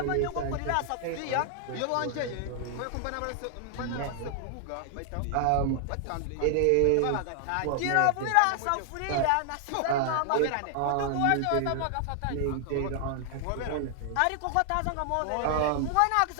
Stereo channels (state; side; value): different; both; correlation 0.00